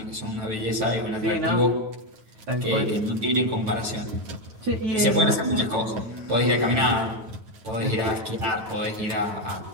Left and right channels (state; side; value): late; left; 9.2 ms